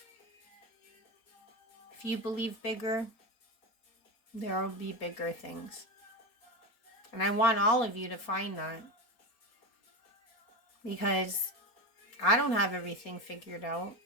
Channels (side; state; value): right; late; 4.3 ms